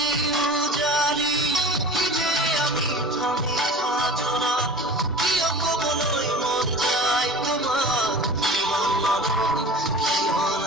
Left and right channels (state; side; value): normal; both; correlation 0.38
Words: উজারি যে আমি থামি থাজনা কিয় কবলৈ মন যায় তোমার কিয়